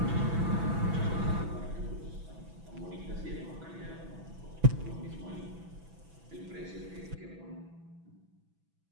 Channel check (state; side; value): late; left; 6.0 ms